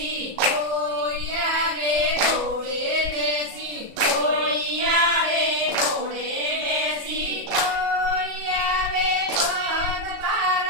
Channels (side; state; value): left; late; 37 ms